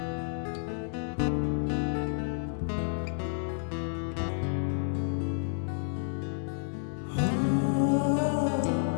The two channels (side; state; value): right; silent; digital silence